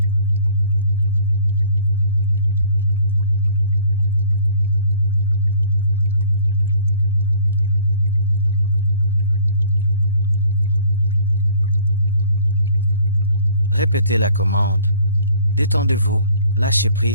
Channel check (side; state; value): both; inverted; correlation -0.55